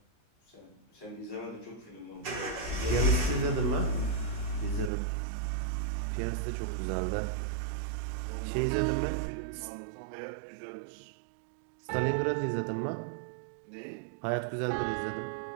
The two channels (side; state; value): left; drops out; at 4.9 s